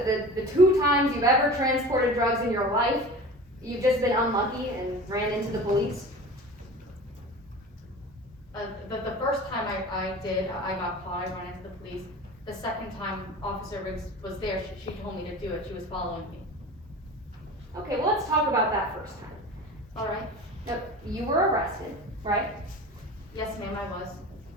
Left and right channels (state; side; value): normal; both; correlation 0.36